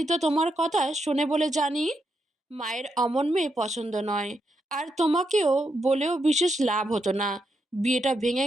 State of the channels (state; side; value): normal; both; correlation 0.82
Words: তো তোমার কথা শোনে বলে জানি। মায়ের অমন মেয়ে পছন্দ নয়। আর তোমাকেও বলেও বিশেষ লাভ হতো না। বিয়েটা ভেঙে